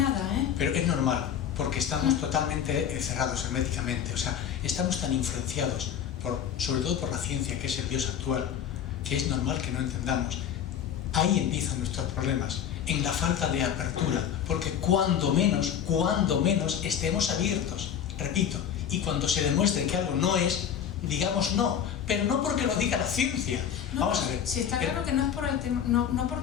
Pero es normal, porque estamos totalmente cerrados herméticamente, o sea, estamos tan influenciados, sobre todo por la ciencia, que es el Dios actual, que es normal que no entendamos. Ahí empiezan nuestros problemas, en la falta de apertura, porque cuando menos estemos abiertos, repito, y cuando se demuestre que algo no es, digamos no, pero no porque lo diga la ciencia. No, vamos a ver. Sí, está claro que no es por el tema, no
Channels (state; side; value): quieter; right; 8.9 dB